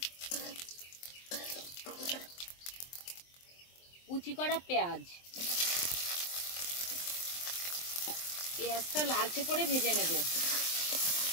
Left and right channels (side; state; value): right; late; 23 ms